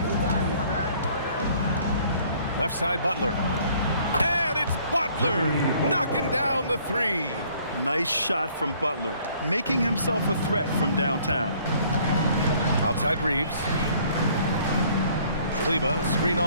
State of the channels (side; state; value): both; inverted; correlation -0.59